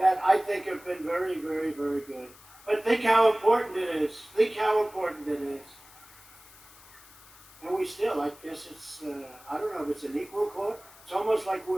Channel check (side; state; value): left; noise; hiss, 23 dB below the sound